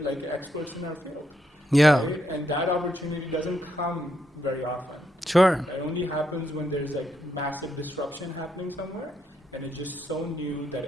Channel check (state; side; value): normal; both; correlation 0.79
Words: like experts in our field. Yeah. Right? And that opportunity doesn't come very often. Sure. It only happens when there's like massive disruption happening somewhere, and it's just so new